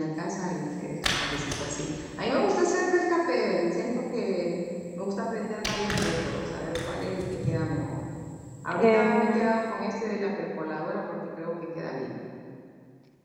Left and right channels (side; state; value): both; identical; correlation 1.00